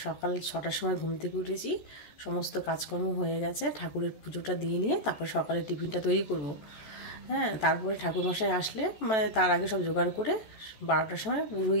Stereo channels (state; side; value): late; right; 14 ms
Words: সকাল 6টার সময় ঘুম থেকে উঠেছি, সমস্ত কাজকর্ম হয়ে গেছে। ঠাকুরের পুজোটা দিয়ে নিয়ে তারপর সকালে টিফিনটা তৈরি করব। হ্যাঁ, তারপরে ঠাকুরমশাই আসলে তার আগে সব জোগাড় করে 12টার সময়